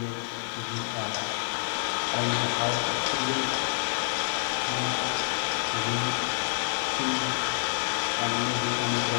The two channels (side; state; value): right; silent; digital silence